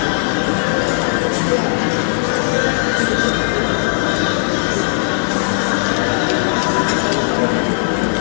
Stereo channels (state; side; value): silent; right; digital silence